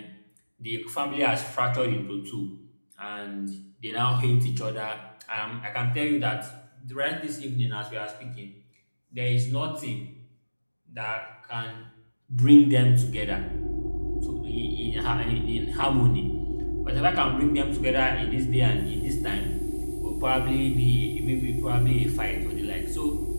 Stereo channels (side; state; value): both; inverted; correlation -1.00